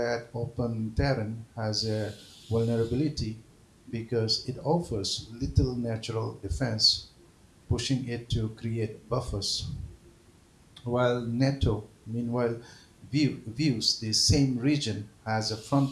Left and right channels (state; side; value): identical; both; correlation 1.00